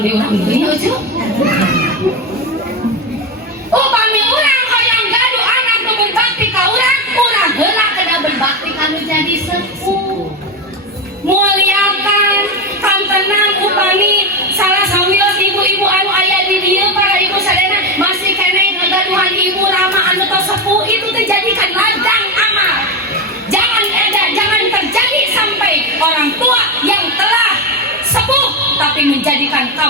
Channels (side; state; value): both; normal; correlation 0.15